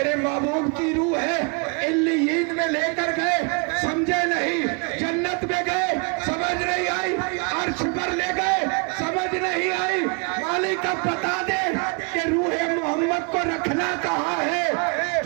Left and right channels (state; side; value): quieter; left; 35.1 dB